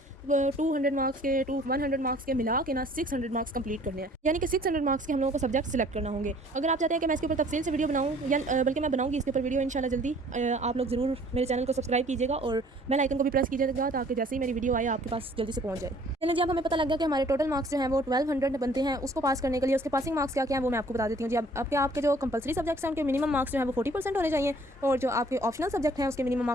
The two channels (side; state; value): both; normal; correlation 0.55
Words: 200 मार्क्स के 100 मार्क्स के मिला के ना 600 मार्क्स कंप्लीट करने हैं, यानी कि 600 मार्क्स के हम लोगों को सब्जेक्ट सिलेक्ट करना होंगे। अगर आप चाहते हैं कि मैं इसके ऊपर तफसील से वीडियो बनाऊँ, या बल्कि मैं बनाऊँगी इसके ऊपर वीडियो इंशाल्लाह जल्दी, आप लोग ज़रूर मेरे चैनल को सब्सक्राइब कीजिएगा और बेल आइकन को भी प्रेस कीजिएगा ताकि जैसे ही मेरी वीडियो आए आपके पास जल्दी से पहुंच जाए। चलिए जी, अब हमें पता लग गया कि हमारे टोटल मार्क्स जो हैं वो 1200 बनते हैं। उसको पास करने के लिए उसके पासिंग मार्क्स क्या क्या हैं वो मैं आपको बता देती हूँ जी। अब आपके जो कंपलसरी सब्जेक्ट्स हैं उनके मिनिमम मार्क्स जो है वो 40% होने चाहिए और जो आपके ऑप्शनल सब्जेक्ट हैं उसके मिनिमम